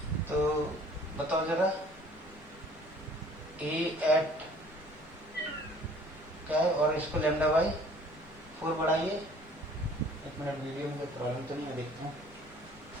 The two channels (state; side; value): normal; both; correlation 0.53